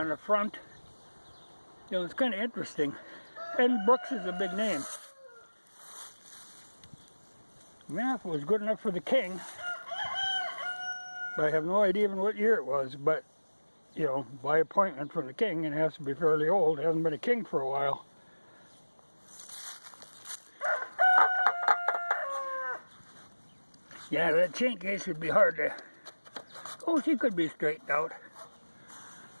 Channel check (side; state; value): both; inverted; correlation -1.00